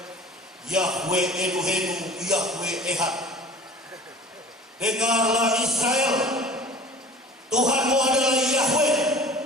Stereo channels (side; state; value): both; normal; correlation 0.43